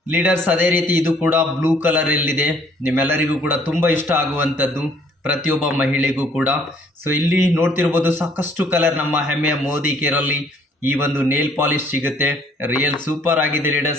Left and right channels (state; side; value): normal; both; correlation 0.61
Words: ಲೀಡರ್ಸ್, ಅದೇ ರೀತಿ ಇದು ಕೂಡ ಬ್ಲೂ ಕಲರಲ್ಲಿದೆ. ನಿಮ್ಮೆಲ್ಲರಿಗೂ ಕೂಡ ತುಂಬ ಇಷ್ಟ ಆಗುವಂಥದ್ದು, ಪ್ರತಿಯೊಬ್ಬ ಮಹಿಳೆಗೂ ಕೂಡ. ಸೊ ಇಲ್ಲಿ ನೋಡ್ತಿರ್ಬೋದು, ಸಾಕಷ್ಟು ಕಲರ್ ನಮ್ಮ ಹೆಮ್ಮೆಯ ಮೋದಿ ಕೇರಲ್ಲಿ ಈ ಒಂದು ನೇಲ್ ಪಾಲಿಶ್ ಸಿಗುತ್ತೆ. ರಿಯಲ್ ಸೂಪರ್ ಆಗಿದೆ